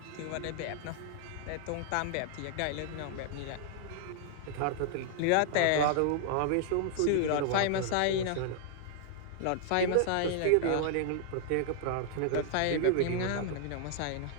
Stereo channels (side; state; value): both; different; correlation 0.00